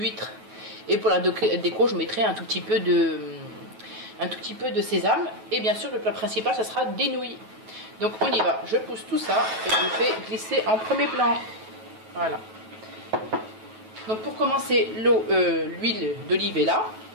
Et pour la déco, je mettrai un tout petit peu de sésame. Et bien sûr le plat principal, ça sera des nouilles. Donc on y va, je pousse tout ça et je fais glisser en premier plan. Voilà. Donc pour commencer, l'huile d'olive est là.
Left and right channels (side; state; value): left; late; 9.2 ms